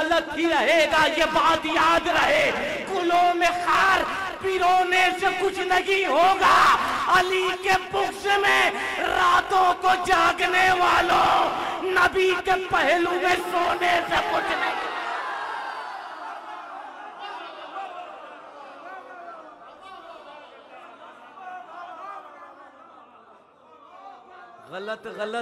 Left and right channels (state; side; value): identical; both; correlation 1.00